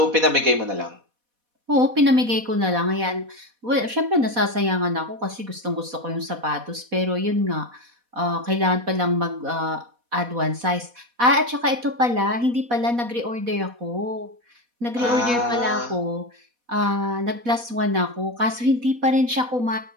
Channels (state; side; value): late; left; 4.1 ms